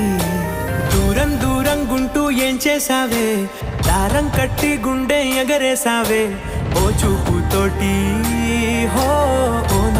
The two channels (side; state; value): both; identical; correlation 1.00